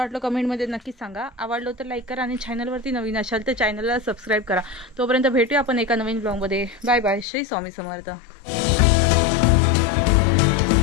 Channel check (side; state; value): right; drops out; at 7.2 s